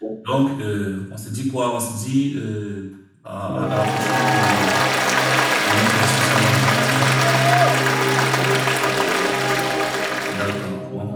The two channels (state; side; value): identical; both; correlation 1.00